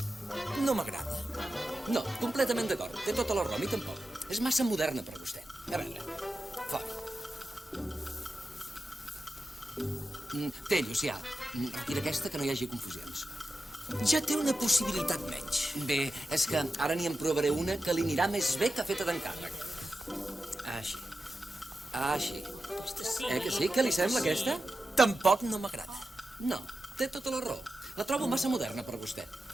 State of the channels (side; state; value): both; normal; correlation 0.91